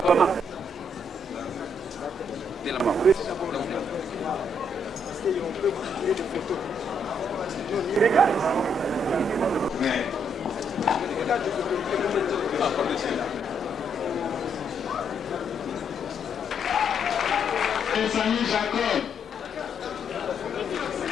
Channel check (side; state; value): both; normal; correlation 0.73